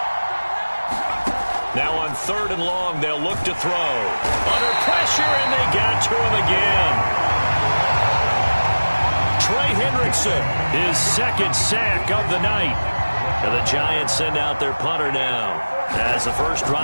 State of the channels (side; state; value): both; inverted; correlation -1.00